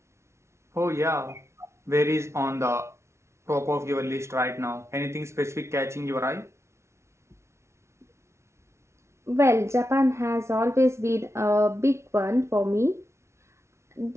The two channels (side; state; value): left; late; 0.13 ms